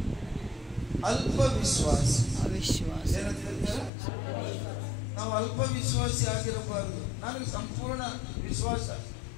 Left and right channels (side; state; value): right; drops out; at 3.9 s